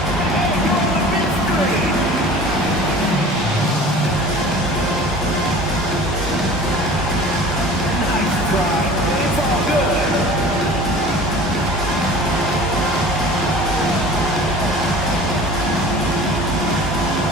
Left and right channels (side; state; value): both; normal; correlation 0.42